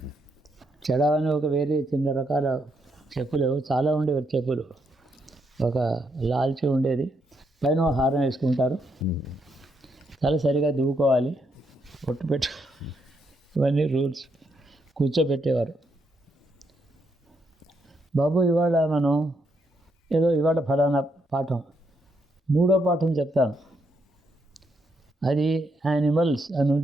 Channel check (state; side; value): normal; both; correlation 0.77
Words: చెడావని ఒక వేరే చిన్న రకాల చెప్పులు, చాలా ఉండేవి చెప్పులు. ఒక లాల్చి ఉండేది, పైన హారం వేసుకుంటారు. తల సరిగా దువ్వుకోవాలి, ఒట్టు పెట్టు, ఇవన్నీ రూల్స్. కూర్చోబెట్టేవారు. బాబు ఇవాళ మనం ఇవాళ ఫలానా పాఠం, 3వ పాఠం చెప్తాను. అది యానిమల్స్ అని